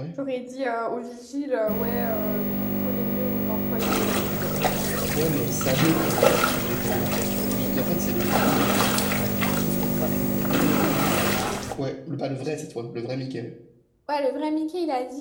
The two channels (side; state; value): both; identical; correlation 1.00